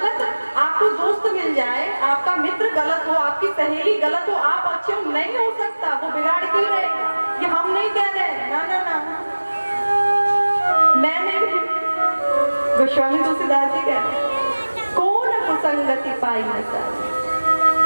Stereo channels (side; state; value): both; inverted; correlation -1.00